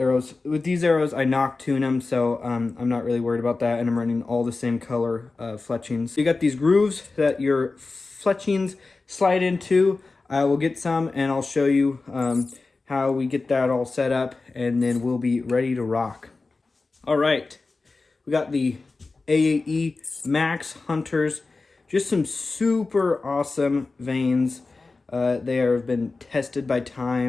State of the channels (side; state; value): right; quieter; 3.7 dB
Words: With these arrows, I knock tune them, so I'm not really worried about that, and I'm running all the same color fletchings. You got these grooves that your fletchings slide into. I will get some and I'll show you how we get that all set up, and then we'll be ready to rock. All right, we got the AE Max Hunters, just some super awesome veins. They have been tested by